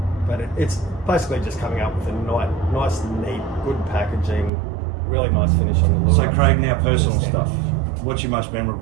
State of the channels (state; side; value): drops out; left; at 4.5 s